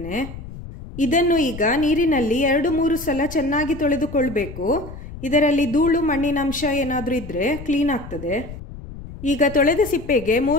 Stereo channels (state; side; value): noise; left; rumble, 13 dB below the sound